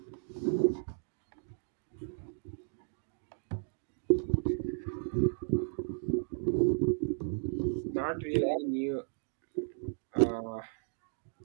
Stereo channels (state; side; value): silent; left; digital silence